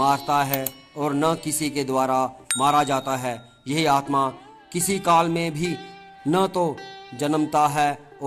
है और न किसी के द्वारा मारा जाता है। यह आत्मा किसी काल में भी न तो जन्मता है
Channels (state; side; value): identical; both; correlation 1.00